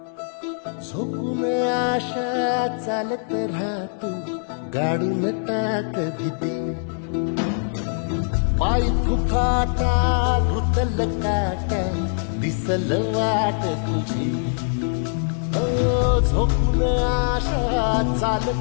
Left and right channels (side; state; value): right; silent; digital silence